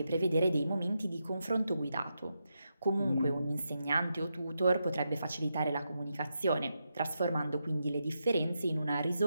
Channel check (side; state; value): both; inverted; correlation -0.85